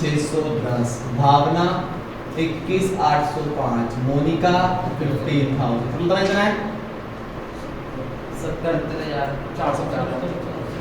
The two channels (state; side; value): identical; both; correlation 1.00